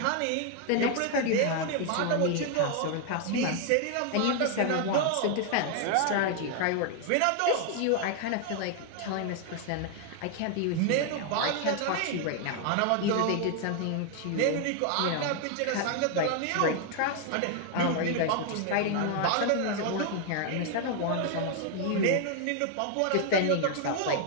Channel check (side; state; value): both; different; correlation 0.00